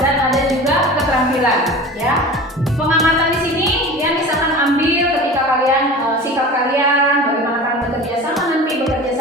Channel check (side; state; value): both; normal; correlation 0.36